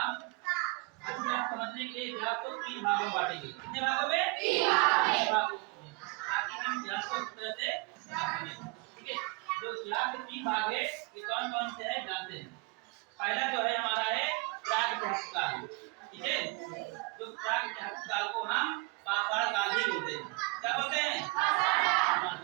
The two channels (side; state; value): left; quieter; 27.5 dB